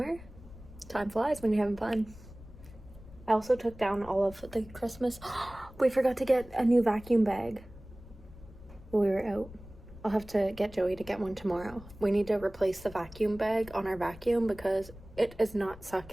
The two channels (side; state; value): left; noise; rumble, 18 dB below the sound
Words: Time flies when you're having fun. I also took down all of the Christmas. We forgot to get a new vacuum bag while we were out. I'll have to get Joey to get one tomorrow. We need to replace the vacuum bag on our vacuum because it is not